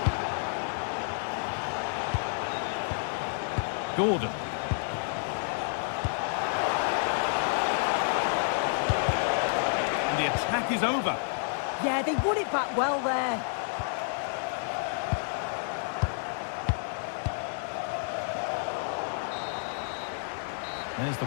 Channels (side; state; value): right; silent; digital silence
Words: Gordon. And the attack is over. Yeah, they won it back well there. There's the